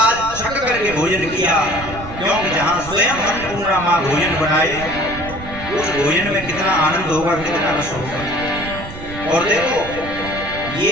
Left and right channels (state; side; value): noise; right; rumble, 12 dB below the sound